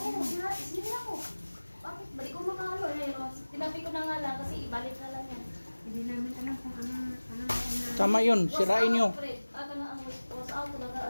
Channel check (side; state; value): both; inverted; correlation -1.00